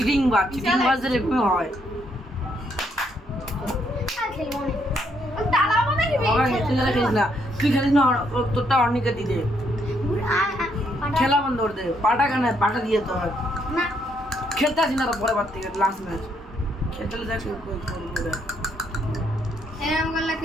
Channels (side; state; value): both; normal; correlation 0.73